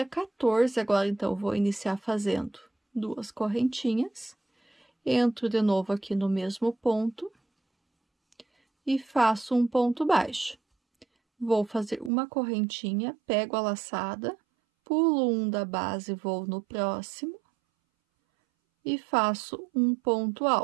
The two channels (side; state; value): left; drops out; at 12.1 s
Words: 14, agora, então, eu vou iniciar fazendo 2 correntinhas. Entro de novo aqui no mesmo ponto e faço um ponto baixo. Vou fazer uma correntinha, pego a laçada, pulo um da base, vou no próximo e faço um ponto